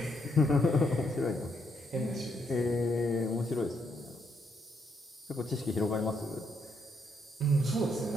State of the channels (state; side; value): normal; both; correlation 0.76